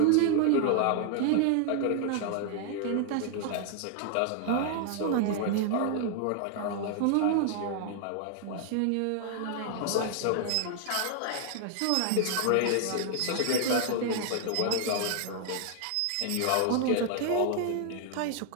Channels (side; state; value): both; different; correlation 0.00